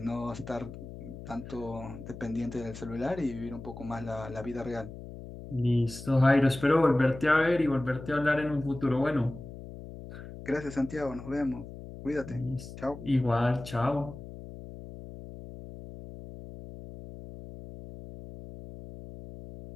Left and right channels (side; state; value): left; noise; hum, 13 dB below the sound